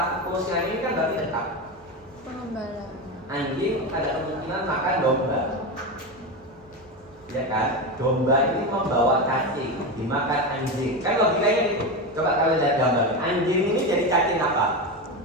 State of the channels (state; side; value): normal; both; correlation 0.18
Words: kursinya ini kan berarti dekat. Pengembala. Anjing ada kemungkinan makan domba, ya kan? Domba ini membawa cacing, dimakan anjing. Kan logikanya gitu. Coba kalian lihat gambar. Anjing ini jadi cacing apa?